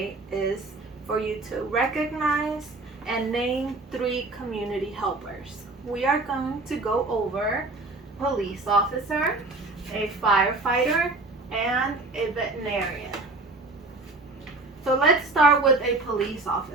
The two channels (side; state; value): left; quieter; 3.2 dB